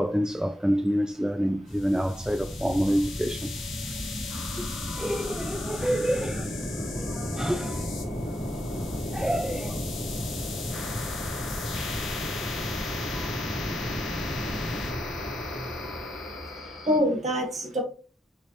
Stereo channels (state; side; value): normal; both; correlation 0.82